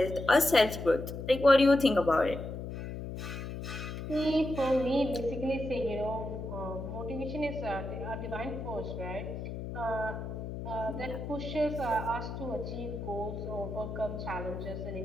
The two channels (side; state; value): left; noise; hum, 7 dB below the sound